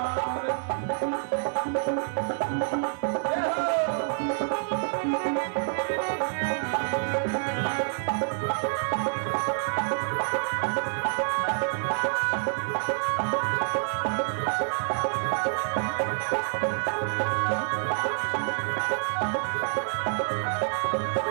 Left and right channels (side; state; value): left; silent; digital silence